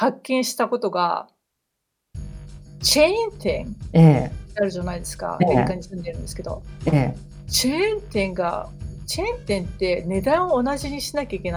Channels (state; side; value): identical; both; correlation 1.00